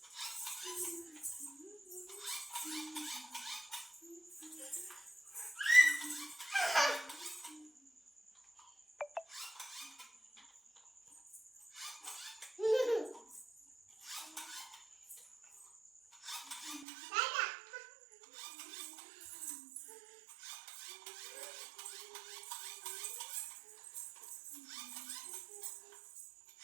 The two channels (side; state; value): left; drops out; at 16.9 s